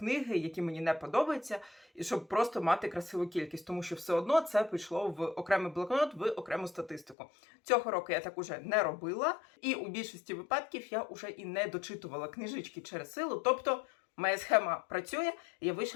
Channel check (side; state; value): right; drops out; at 7.2 s